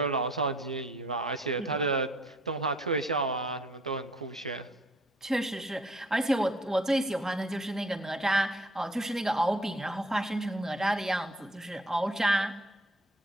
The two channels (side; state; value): both; normal; correlation 0.59